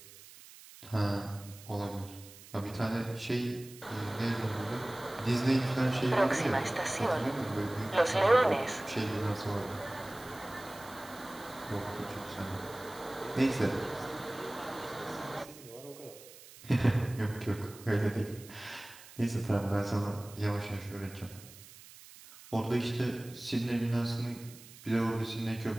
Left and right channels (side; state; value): right; noise; hiss, 19 dB below the sound